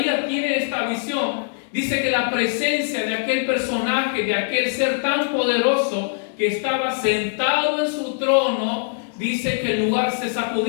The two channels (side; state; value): right; silent; digital silence